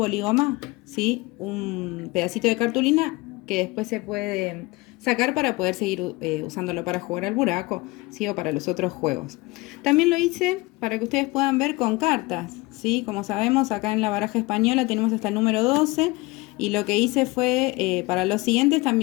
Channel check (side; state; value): right; quieter; 22.8 dB